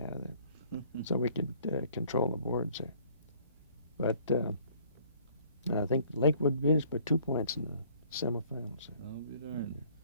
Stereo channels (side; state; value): both; inverted; correlation -0.58